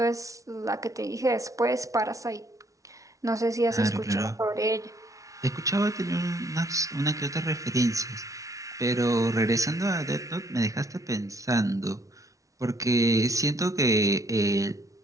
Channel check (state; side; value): late; left; 0.16 ms